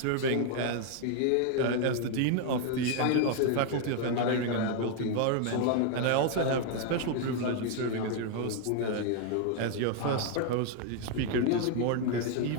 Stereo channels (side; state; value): both; different; correlation 0.00